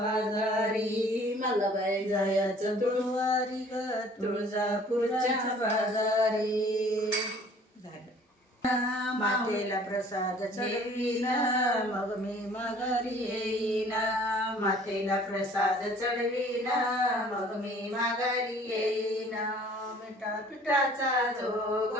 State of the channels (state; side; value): normal; both; correlation 0.53